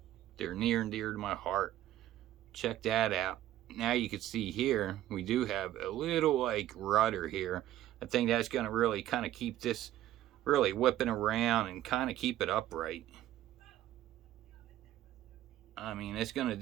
they're near and dear to my heart. Check that out. Now you can see here, we do have a little like rudder here. I think that's going to really kind of keep this really whipping around and kind of keep it upright. I mean, it's going to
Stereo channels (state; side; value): quieter; left; 13.4 dB